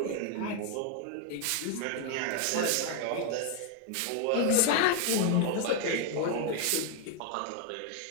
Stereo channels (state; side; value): different; both; correlation 0.01